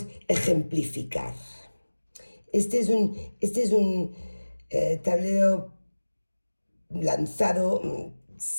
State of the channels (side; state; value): both; inverted; correlation -1.00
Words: ejemplificar. Este es un tablero lanzado